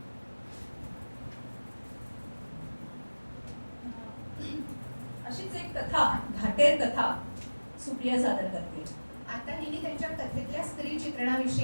अशीच एक कथा, घाटेर कथा सुप्रिया सादर करते. आता हिने त्यांच्या कथेतल्या स्त्री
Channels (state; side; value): inverted; both; correlation -1.00